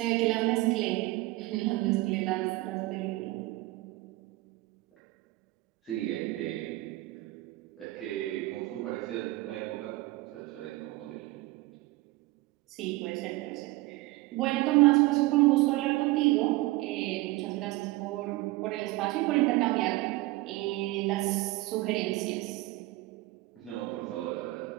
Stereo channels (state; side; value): quieter; left; 19.9 dB